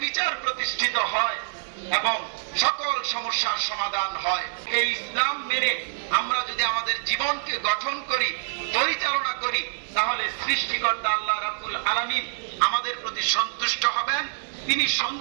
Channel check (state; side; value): silent; left; digital silence